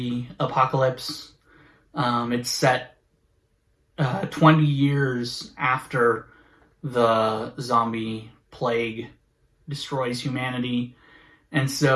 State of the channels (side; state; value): both; identical; correlation 1.00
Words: apocalypse. It's set 20 years after the zombie plague destroys humanity. And